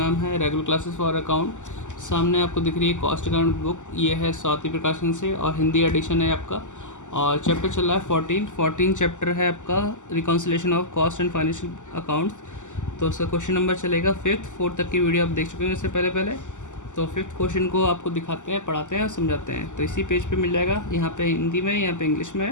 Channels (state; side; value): late; right; 0.85 ms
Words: है रेगुलर क्लासेस फॉर अकाउंट। सामने आपको दिख रही है कॉस्ट अकाउंट बुक। ये है स्वाति प्रकाशन से और हिंदी एडिशन है आपका। और चैप्टर चल रहा है 14 चैप्टर है आपका, reconciliation of cost and financial accounts. तो उसका क्वेश्चन नंबर चलेगा 5th 4th तक की वीडियो आप देख चुके हैं इससे पहले। तो 5th क्वेश्चन को आपको दिखाते हैं, पढ़ाते हैं और समझाते हैं। तो इसी पेज पे मिल जाएगा, यहाँ पे हिंदी में, यहाँ पे इंग्लिश में